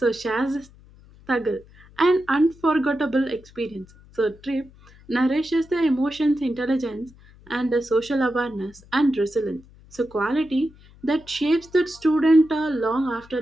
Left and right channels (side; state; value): left; noise; hum, 24 dB below the sound